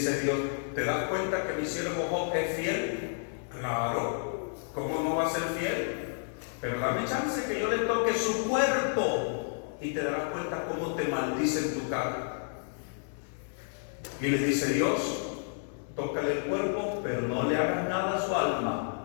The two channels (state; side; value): silent; right; digital silence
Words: Dios, ¿te das cuenta que mi siervo Job es fiel? Claro, ¿cómo no va a ser fiel? Pero dame chance que yo le toque su cuerpo y te darás cuenta cómo te maldice en tu cara. Y le dice Dios, tócale el cuerpo, pero no le hagas nada a su alma.